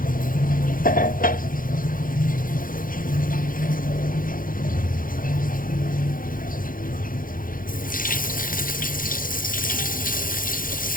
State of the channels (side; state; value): right; late; 0.40 ms